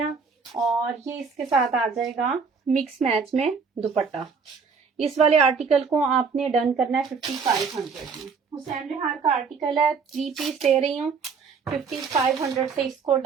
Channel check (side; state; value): left; quieter; 5.4 dB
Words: और ये इसके साथ आ जाएगा मिक्स मैच में दुपट्टा। इस वाले आर्टिकल को आपने डन करना है 5500 में। हुसैन रिहार का आर्टिकल है, 3 पीस दे रही हूँ, 5500 से इसको